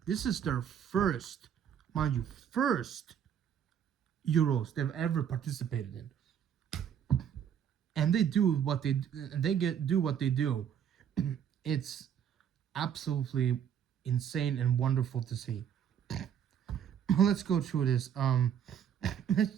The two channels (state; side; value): quieter; left; 8.7 dB